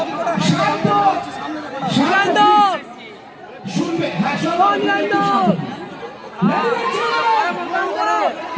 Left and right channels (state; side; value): identical; both; correlation 1.00